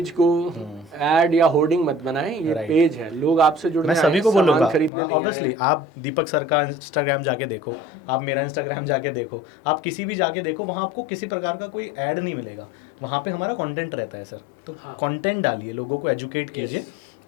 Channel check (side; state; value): right; drops out; at 4.9 s